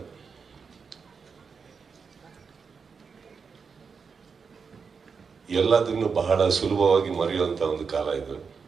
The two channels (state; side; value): quieter; left; 5.6 dB